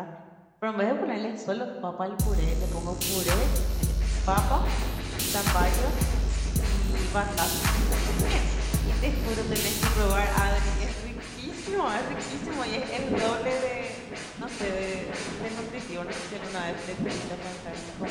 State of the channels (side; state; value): both; identical; correlation 1.00